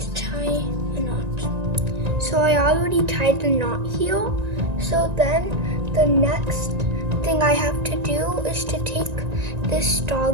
tie a knot. So I already tied the knot here. So then the next thing I have to do is to take this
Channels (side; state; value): left; late; 1.9 ms